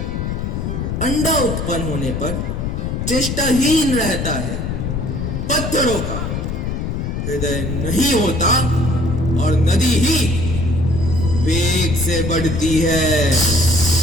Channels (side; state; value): left; noise; rumble, 2 dB below the sound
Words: अंडा उत्पन्न होने पर चेष्टाहीन रहता है। पत्थरों का हृदय नहीं होता और नदी ही वेग से बढ़ती है।